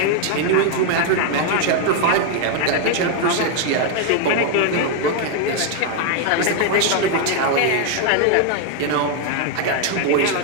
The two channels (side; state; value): both; different; correlation 0.01